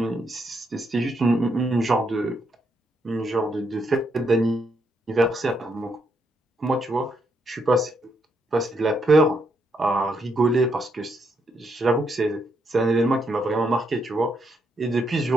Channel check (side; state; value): both; normal; correlation 0.77